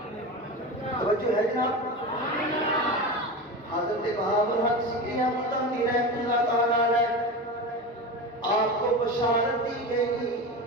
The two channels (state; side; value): normal; both; correlation 0.25